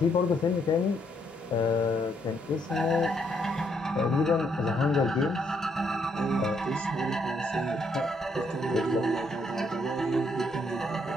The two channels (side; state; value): both; normal; correlation 0.73